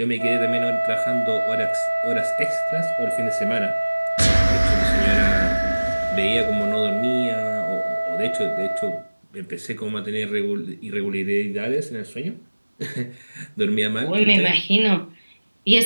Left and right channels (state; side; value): inverted; both; correlation -1.00